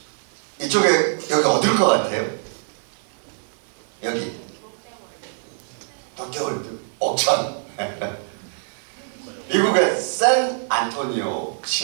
이쪽에 여기 어딜 것 같아요? 여기 롯데월드 옥천. 미국의 샌 안토니오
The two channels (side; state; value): left; silent; digital silence